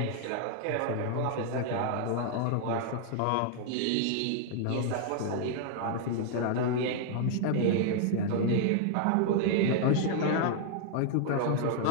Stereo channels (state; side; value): different; both; correlation -0.01